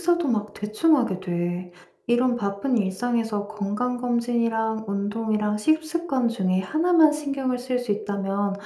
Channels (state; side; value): identical; both; correlation 1.00